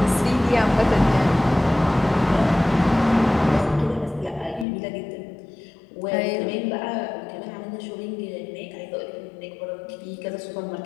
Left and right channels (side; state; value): right; drops out; at 4.7 s